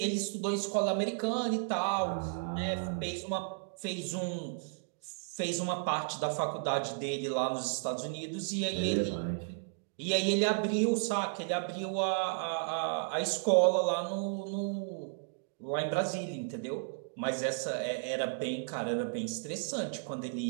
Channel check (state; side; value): silent; left; digital silence